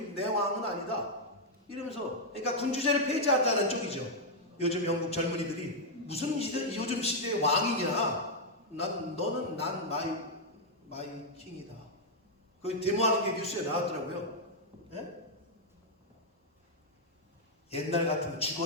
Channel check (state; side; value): normal; both; correlation -0.03